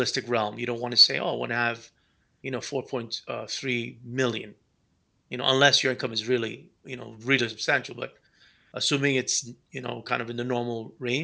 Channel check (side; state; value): both; identical; correlation 1.00